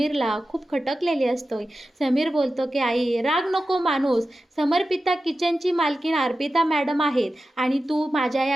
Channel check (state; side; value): normal; both; correlation 0.93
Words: खूप खटकलेली असते. समीर बोलतो की आई राग नको माणूस, समर्पिता किचनची मालकीन अर्पिता मॅडम आहेत आणि तू माझ्या